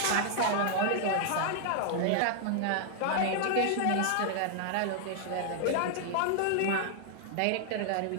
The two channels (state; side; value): different; both; correlation 0.00